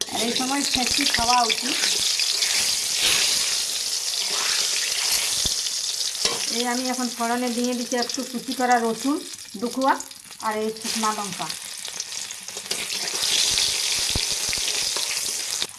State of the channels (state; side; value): identical; both; correlation 1.00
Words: আর এই সময় ছেঁচকি খাওয়া উচিত। এই আমি এখন ফোড়নে দিয়ে দিচ্ছি একটু কুচি করা রসুন দুখুয়া, আর এই শুকনো লঙ্কা।